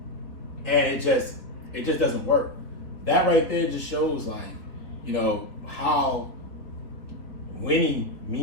and it just doesn't work. That right there just shows like, you know, how winning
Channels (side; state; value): right; late; 3.5 ms